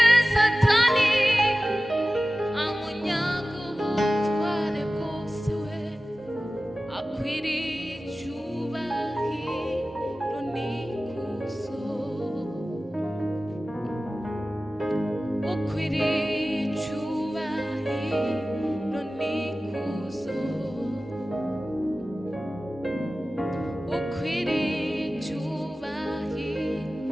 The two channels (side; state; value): both; normal; correlation 0.96